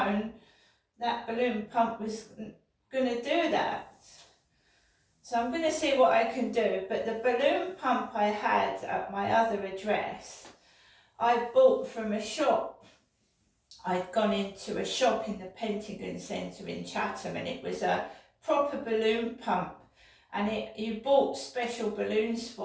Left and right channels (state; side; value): identical; both; correlation 1.00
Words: that balloon pump was going to do that. So I'm going to see what I can do. But the balloon pump I had at my other address, I bought from a shop. I'd gone into a shop in the Pentagon Centre in Chatham, and it was a proper balloon pump. And you bought special balloons